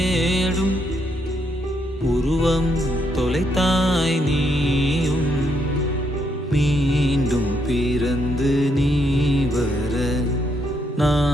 உருவம் தொலைத்தாய் நீயும். மீண்டும் பிறந்து நீ வர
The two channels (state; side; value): normal; both; correlation 0.76